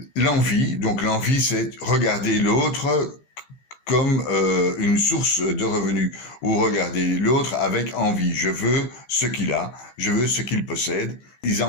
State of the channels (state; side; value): late; right; 15 ms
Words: l'envie, c'est regarder l'autre comme une source de revenus, ou regarder l'autre avec envie. Je veux ce qu'il a, je veux ce qu'il possède. Ils